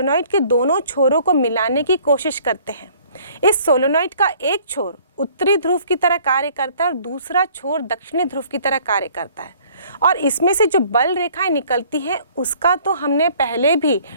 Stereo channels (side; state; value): both; inverted; correlation -0.56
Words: के दोनों छोरों को मिलाने की कोशिश करते हैं, इस सोलेनॉइड का एक छोर उत्तरी ध्रुव की तरह कार्य करता है और दूसरा छोर दक्षिणी ध्रुव की तरह कार्य करता है, और इसमें से जो बल रेखाएं निकलती हैं उसका तो हमने पहले भी